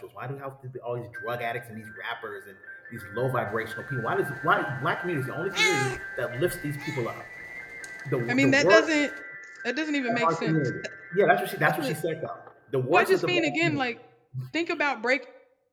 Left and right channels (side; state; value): both; identical; correlation 1.00